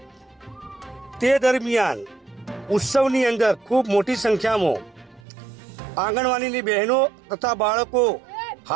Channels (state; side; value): drops out; left; at 5.2 s